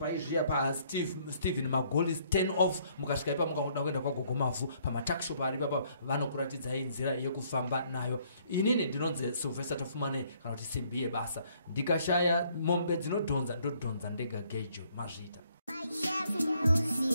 paSteven Magolis 10 off mukasvika ipa mukaoda kuenda kwagogo Mavhu pamatakshop ari papa vanokuratidzai nzira yekufamba nayo. Inini ndinonzi Silvester tafumane kana kuti simbi yebasa ndikashaya mombe dzinodhonza ndodhonza ndega gejo mazvita.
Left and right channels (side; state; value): both; inverted; correlation -0.65